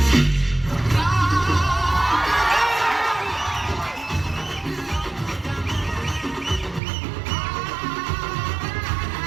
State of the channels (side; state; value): left; drops out; at 6.8 s